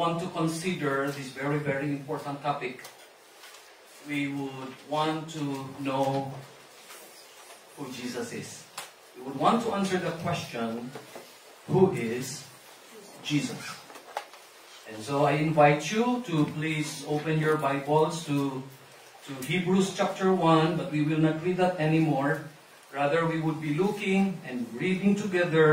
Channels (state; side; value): identical; both; correlation 1.00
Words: to consider this very, very important topic. We would want to know who Jesus is. We would want to answer the question, who is Jesus? And so I invite you to please open your Bibles to Hebrews chapter 1, but we will not read that anymore. Rather, we would be looking and reading